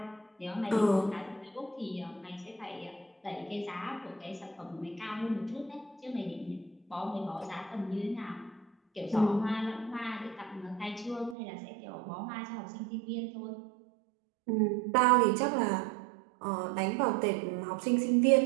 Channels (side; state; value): left; drops out; at 11.4 s